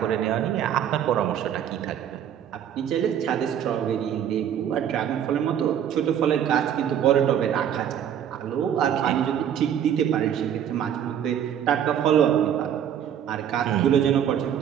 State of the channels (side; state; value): left; quieter; 9.4 dB